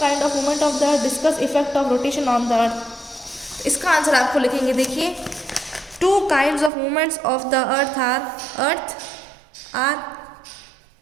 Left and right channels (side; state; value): left; drops out; at 6.7 s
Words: kind of movement of the earth, discuss effect of rotation on the earth. इसका आंसर आपको लिखेंगे। देखिए, two kinds of movements of the earth are